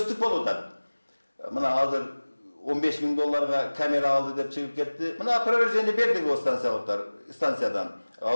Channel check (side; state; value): both; inverted; correlation -1.00